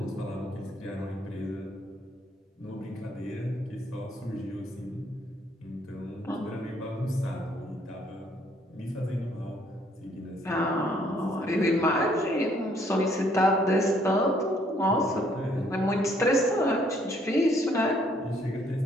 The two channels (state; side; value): normal; both; correlation 0.66